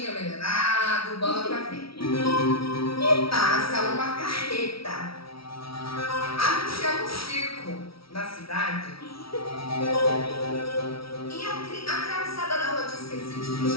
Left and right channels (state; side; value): late; right; 0.75 ms